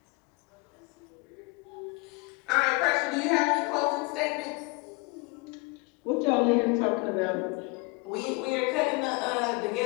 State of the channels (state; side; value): quieter; right; 28.5 dB